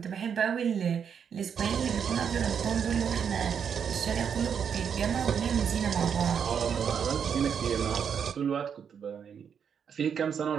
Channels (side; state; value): left; quieter; 7.4 dB